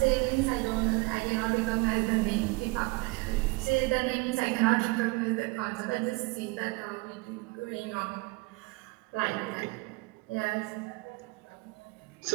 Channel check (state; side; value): quieter; left; 25.6 dB